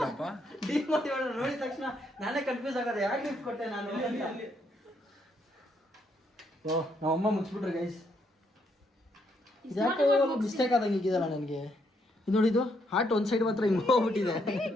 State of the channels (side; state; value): both; normal; correlation 0.74